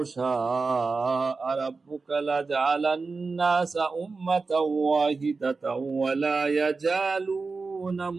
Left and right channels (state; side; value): quieter; left; 4.2 dB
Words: شاء ربك لجعل الناس أمة واحدة ولا يزالون